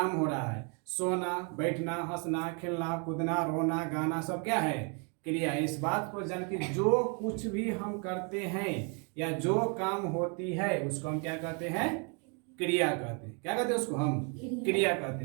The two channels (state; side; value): quieter; left; 36.5 dB